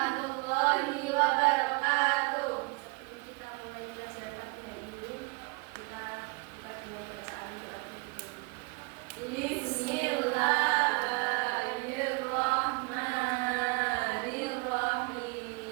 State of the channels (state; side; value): quieter; left; 29.0 dB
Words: wabarakatuh. Sebelum kita mulai pelajaran hari ini, kita buka dengan bacaan doa berikut.